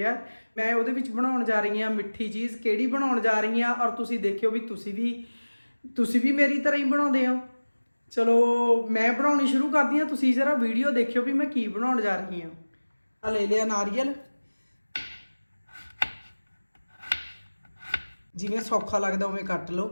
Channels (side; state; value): both; inverted; correlation -1.00